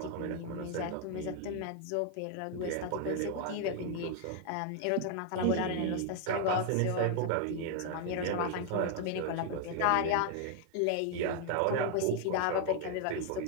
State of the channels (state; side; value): different; both; correlation 0.00